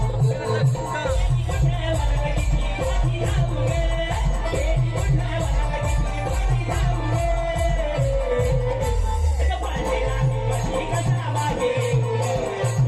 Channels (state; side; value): identical; both; correlation 1.00